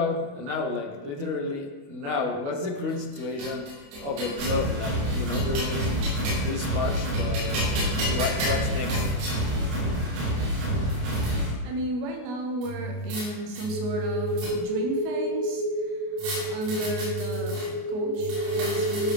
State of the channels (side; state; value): left; late; 28 ms